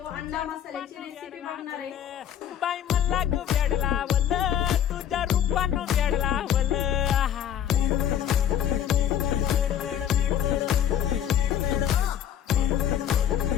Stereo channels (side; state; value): right; quieter; 10.0 dB